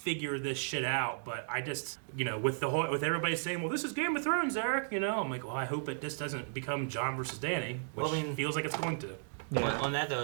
this shit out, but I just, with everybody saying, well, this is Game of Thrones, Eric, I'm like, well, I hope it just doesn't become John versus Danny, which feels like it's going to. On that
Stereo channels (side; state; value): left; silent; digital silence